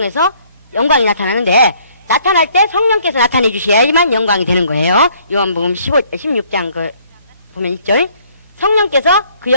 영광이 나타나는데, 나타날 때 성령께서 나타내 주셔야지만 영광이 되는 거예요. 요한복음 16장 보면 1절. 성령께서 그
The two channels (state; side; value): inverted; both; correlation -0.62